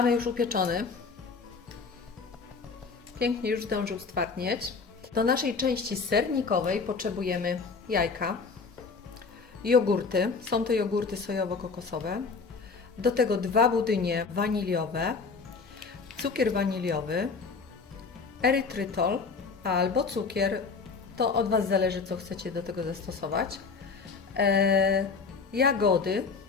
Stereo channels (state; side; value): quieter; right; 4.8 dB